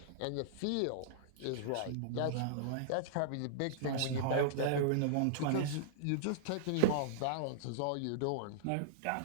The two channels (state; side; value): different; both; correlation -0.01